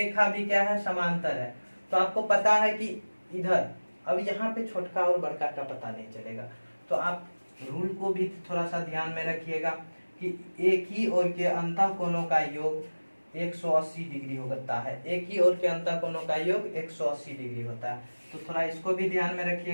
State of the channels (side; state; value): both; inverted; correlation -1.00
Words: भी क्या है समांतर है, तो आपको पता है कि इधर, अब यहाँ पे छोटका और बड़का का पता नहीं चलेगा, तो आप रूल को भी थोड़ा सा ध्यान में रखिएगा कि एक ही ओर के अंतः कोणों का योग 180 डिग्री होता है, एक ही ओर के अंतः कोणों का योग 180 डिग्री होता है, तो थोड़ा इसको भी ध्यान में